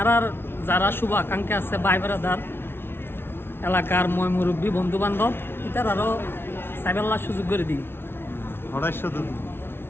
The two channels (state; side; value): late; right; 0.11 ms